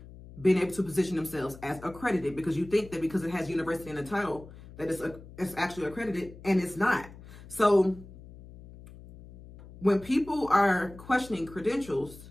being able to position themselves as accredited because you think that because it has university in the title that it's actually accredited and it's not. So when people are questioning credentials,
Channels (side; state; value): left; noise; hum, 18 dB below the sound